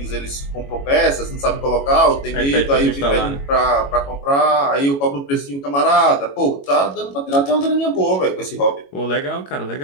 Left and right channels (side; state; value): right; late; 21 ms